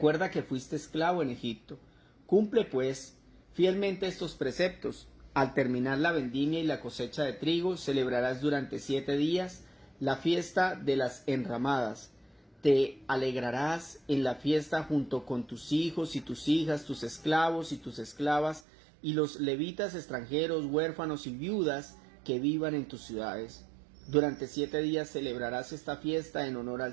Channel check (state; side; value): drops out; left; at 18.6 s